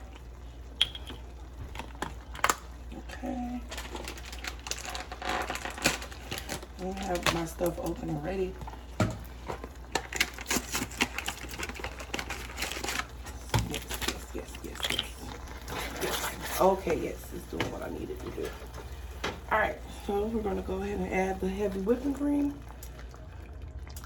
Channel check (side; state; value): both; identical; correlation 1.00